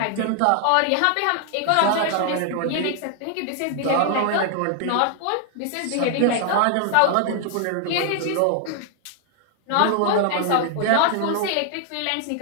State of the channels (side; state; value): both; different; correlation 0.00